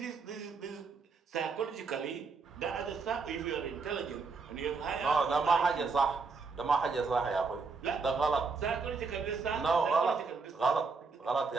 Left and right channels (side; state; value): left; quieter; 4.6 dB